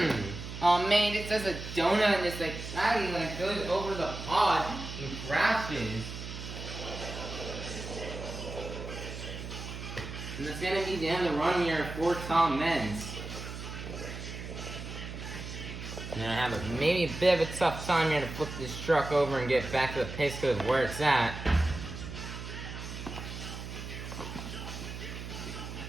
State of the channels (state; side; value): noise; right; hum, 9 dB below the sound